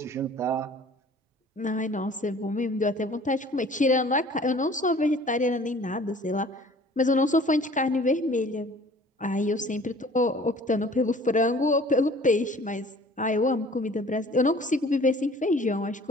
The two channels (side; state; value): both; normal; correlation 0.50